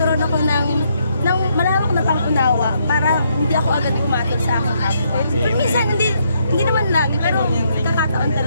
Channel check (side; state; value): both; inverted; correlation -0.74